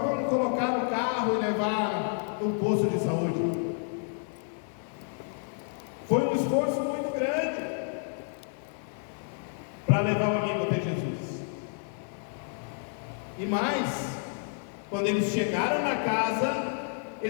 colocar no carro e levar no posto de saúde. Foi um esforço muito grande para levar o amigo até Jesus. E mais, quando eles chegaram na casa,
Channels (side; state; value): right; silent; 58 dB below the other